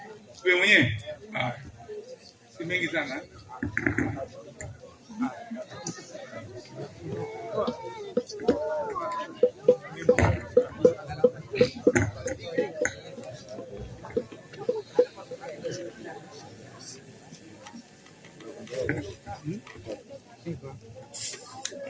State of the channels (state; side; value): identical; both; correlation 1.00